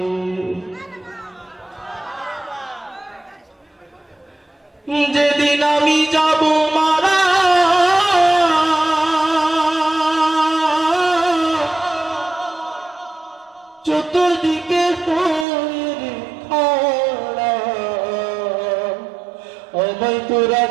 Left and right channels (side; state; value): left; drops out; at 15.5 s